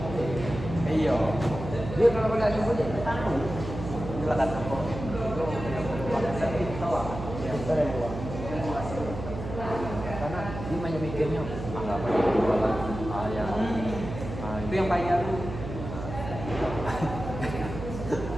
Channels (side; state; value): right; noise; hum, 8 dB below the sound